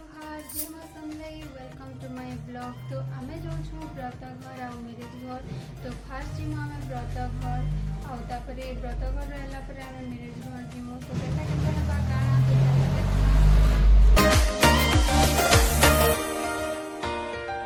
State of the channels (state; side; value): identical; both; correlation 1.00